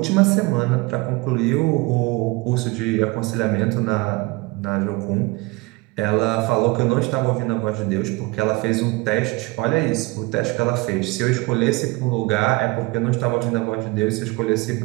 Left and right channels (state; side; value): quieter; left; 23.8 dB